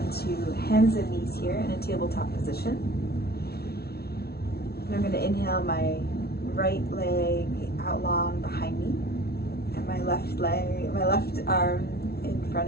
hands and knees here in a tabletop position. And I'm going to inhale my right leg out long behind me. My left arm in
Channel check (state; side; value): late; right; 0.45 ms